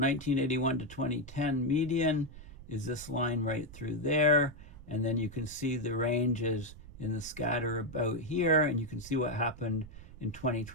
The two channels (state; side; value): noise; right; rumble, 16 dB below the sound